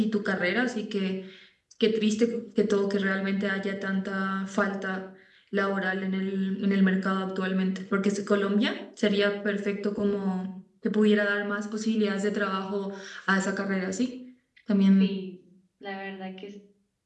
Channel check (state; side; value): identical; both; correlation 1.00